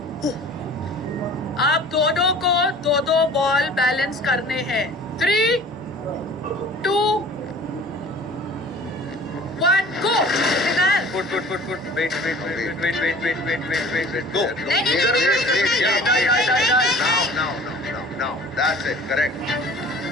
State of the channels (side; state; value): both; normal; correlation 0.46